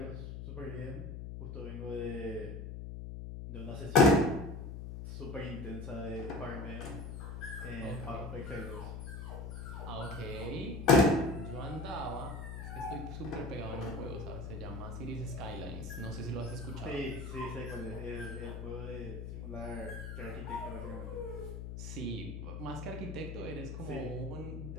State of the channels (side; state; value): left; noise; hum, 7 dB below the sound